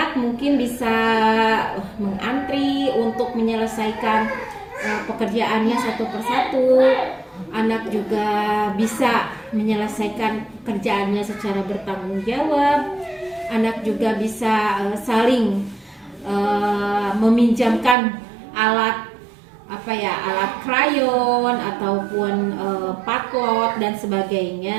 mungkin bisa mengantri untuk menyelesaikan pekerjaannya satu persatu. Anak juga bisa menyelesaikan kerjaannya secara bertanggung jawab. Anak juga bisa saling meminjamkan alat alat krayon ataupun patlot dan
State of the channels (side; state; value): left; drops out; at 17.9 s